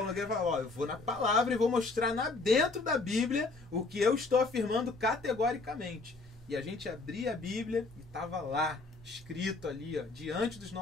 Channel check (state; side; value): quieter; right; 3.6 dB